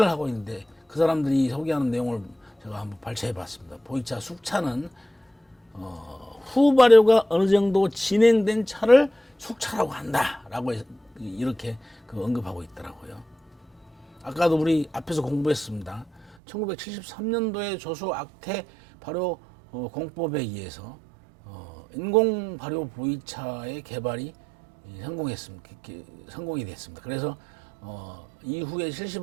하고 있는데 그 사람들이 소개하는 내용을 제가 한번 발췌해 봤습니다. 보이차 숙차는 후 발효가 어느 정도 진행된 차를 숙차라고 한다라고 이렇게 그 언급하고 있더라고요. 아까도 우리 앞에서 공부했습니다. 1973년도에 조수 악태 발효 공법에 의해서 인공 발효 보이차의 개발이 성공이 됐습니다. 그래서 이후에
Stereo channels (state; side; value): drops out; left; at 16.4 s